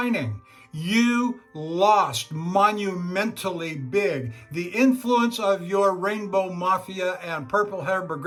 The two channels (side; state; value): both; identical; correlation 1.00